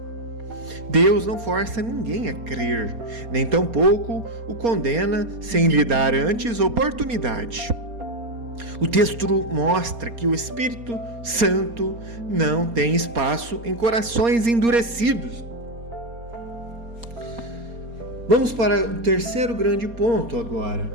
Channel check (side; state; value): left; late; 4.3 ms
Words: Deus não força ninguém a crer, nem tampouco o condena sem lhe dar antes oportunidade. O texto mostra que o Espírito Santo não tem espaço em corações endurecidos. Vamos para o terceiro grande ponto agora,